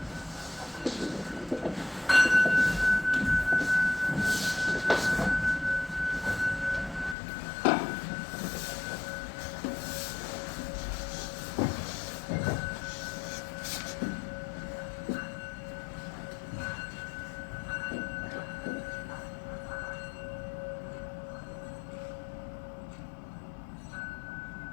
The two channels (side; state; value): right; drops out; at 7.2 s